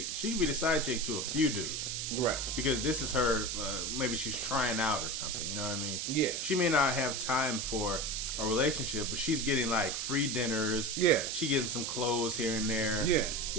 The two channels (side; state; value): right; noise; hiss, 2 dB below the sound